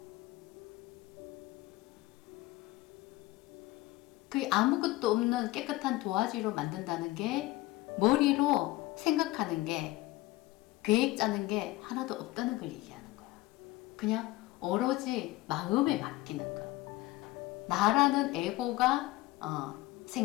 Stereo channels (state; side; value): quieter; right; 18.4 dB